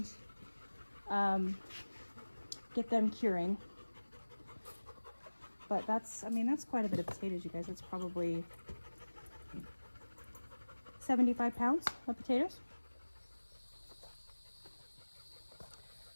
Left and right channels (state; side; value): inverted; both; correlation -1.00